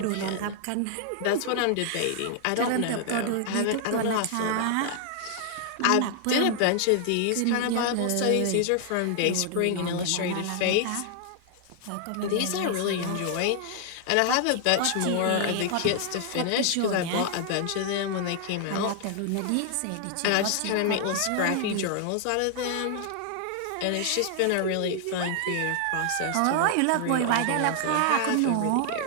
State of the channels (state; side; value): different; both; correlation 0.00